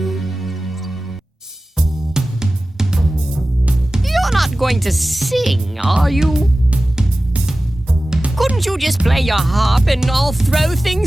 You're not going to sing, are you? Couldn't you just play your harp and I'll throw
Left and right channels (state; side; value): normal; both; correlation 0.96